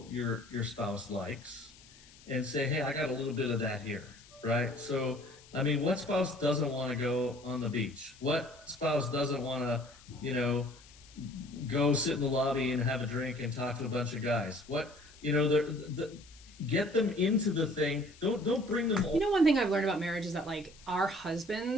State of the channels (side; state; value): left; noise; hiss, 23 dB below the sound